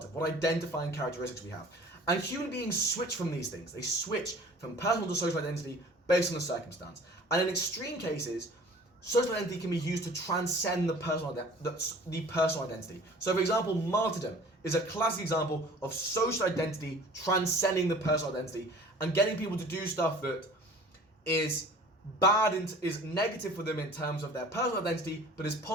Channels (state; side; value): normal; both; correlation 0.47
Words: of, what identifying characteristics we have. And human beings switch from these things. They switch from personal to social identity based on the circumstance. And in extreme cases, social identity can be used to transcend the personal identity. So for example, martyrdom is a classic example of social identity transcending the personal identity and getting people to do stuff that is bad and is negative for them in terms of their personal identity, but is